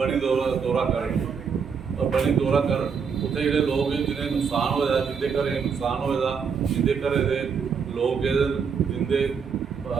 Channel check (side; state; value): left; quieter; 6.2 dB